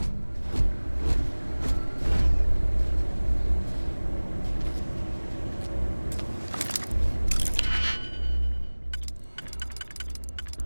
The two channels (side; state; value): both; inverted; correlation -1.00